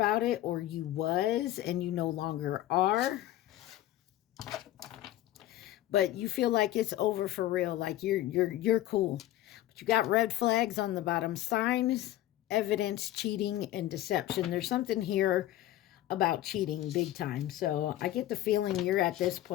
it, or you was and you no longer are. But you feel like it's over for real, like you're cool. But you got red flags on the bottom: signs, evidence, cheating, and deception. There's something here about cheating big time. So I get the feeling you're at this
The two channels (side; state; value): right; quieter; 14.4 dB